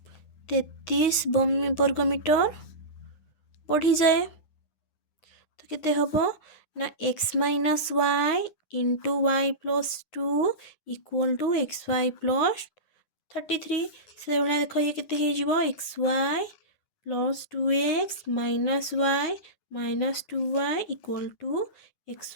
33 वर्ग मीटर बढ़ी जाए। तो केते हबो ना x minus Y into Y plus 2 equal to X Y plus 33। से भाई देख ये केते हो X Y plus 2x minus Y minus 2y equal to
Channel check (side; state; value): right; late; 9.7 ms